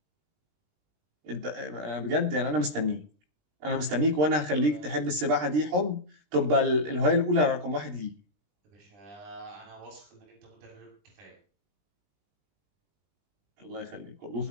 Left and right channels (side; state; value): left; late; 20 ms